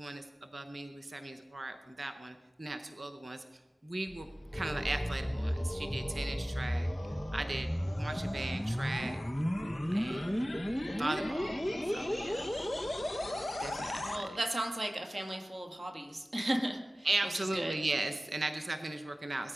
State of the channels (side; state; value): both; normal; correlation 0.97